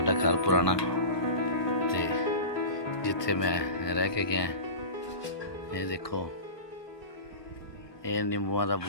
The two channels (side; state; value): right; late; 1.4 ms